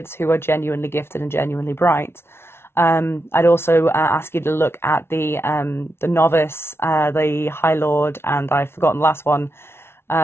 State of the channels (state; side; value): late; right; 0.12 ms